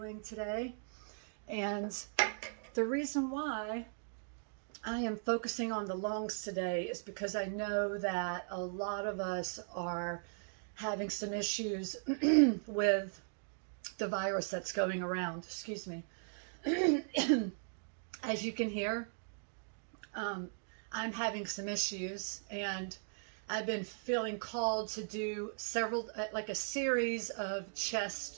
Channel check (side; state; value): left; silent; digital silence